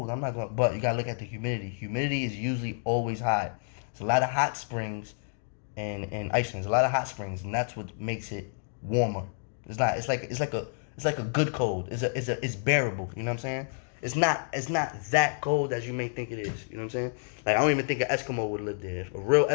I'm not going to, but you got to look at the humidity. Humidity is usually always high. It's a lot of hot springs in Iceland. There's a lot of hot springs, and that's what makes it warmer. It's not. It's like It's like a good cold. It's bearable. You know what I'm saying? It's not that cold as you may think it is. You know what I'm saying? Like I don't even think an Eskimo would live there. A real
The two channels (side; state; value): right; silent; digital silence